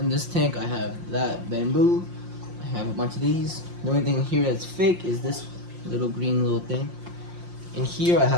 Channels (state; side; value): late; left; 5.7 ms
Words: this tank, I have that bamboo. I have a bunch of these. The only thing here that's fake is this green little thing. In here, I